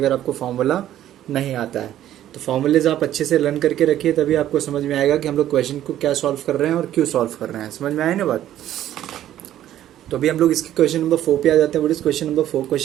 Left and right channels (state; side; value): quieter; left; 12.2 dB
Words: अगर आपको फार्मूला नहीं आता है। तो फार्मूलेज आप अच्छे से लर्न करके रखिए, तभी आपको समझ में आएगा कि हम लोग क्वेश्चन को क्या सॉल्व कर रहे हैं और क्यों सॉल्व कर रहे हैं। समझ में आए ना बात। तो अभी हम लोग इसके क्वेश्चन नंबर 4 पे आ जाते हैं। What is question number 4?